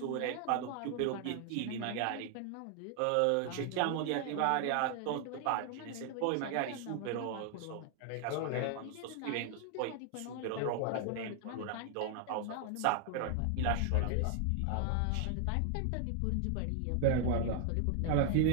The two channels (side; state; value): both; different; correlation 0.00